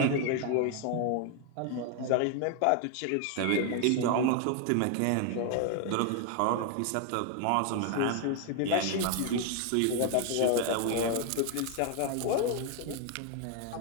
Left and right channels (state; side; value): different; both; correlation 0.00